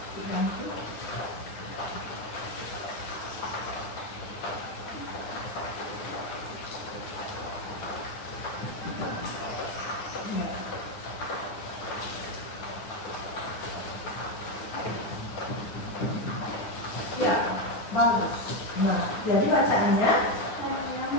Ya, bagus. Nah, jadi bacaannya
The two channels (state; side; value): late; right; 9.6 ms